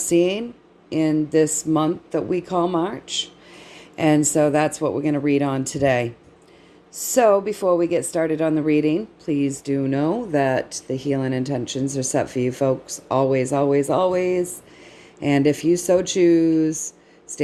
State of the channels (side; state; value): both; identical; correlation 1.00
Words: in this month that we call March. And so that's what we're going to read on today. So before we get started on the reading, please do know that the healing intentions are set for you folks always, always, always. And if you so choose,